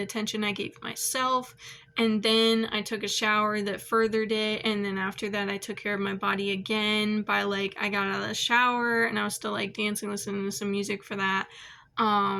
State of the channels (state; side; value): identical; both; correlation 1.00